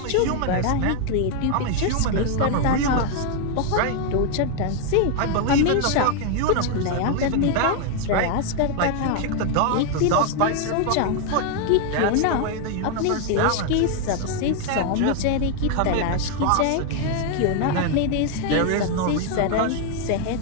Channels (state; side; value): different; both; correlation 0.00